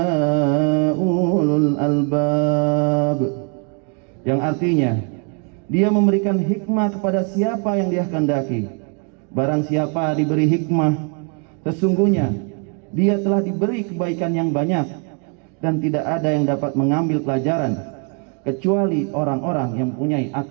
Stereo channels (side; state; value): left; quieter; 38.1 dB